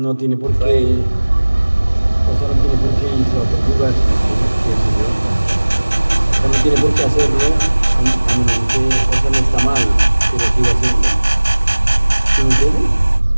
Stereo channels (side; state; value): both; inverted; correlation -1.00